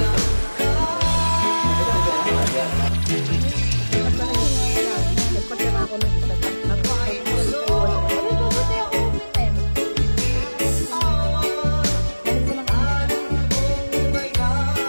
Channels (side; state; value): both; inverted; correlation -1.00